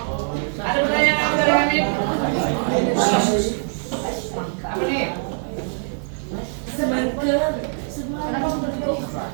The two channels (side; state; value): left; silent; 64 dB below the other